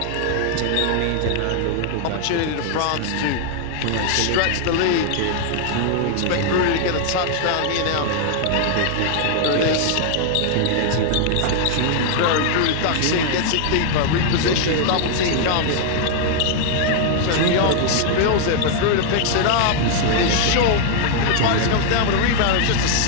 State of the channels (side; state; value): both; different; correlation 0.00